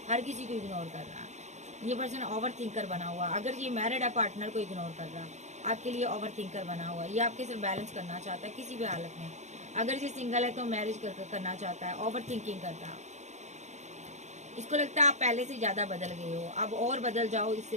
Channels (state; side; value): late; left; 0.33 ms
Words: हर किसी को इग्नोर कर रहा है। ये पर्सन ओवर थिंकर बना हुआ। अगर ये मैरिड है, पार्टनर को इग्नोर कर रहा, आपके लिए ओवर थिंकर बना हुआ। ये आपके साथ बैलेंस करना चाहता है किसी भी हालत में। अगर ये सिंगल है तो मैरिज करना चाहता है, ओवर थिंकिंग करता। इसको लगता है आप पहले से ज़्यादा बदल गए हो, अब और बदल जाओ इससे